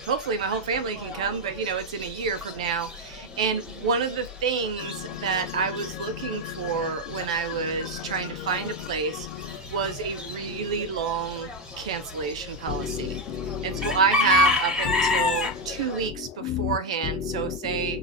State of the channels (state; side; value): normal; both; correlation 0.04